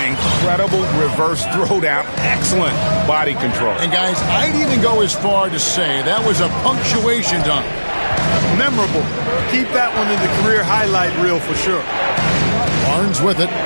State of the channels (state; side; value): inverted; both; correlation -1.00